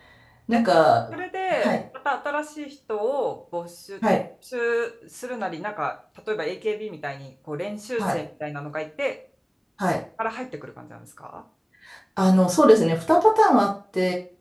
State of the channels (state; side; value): identical; both; correlation 1.00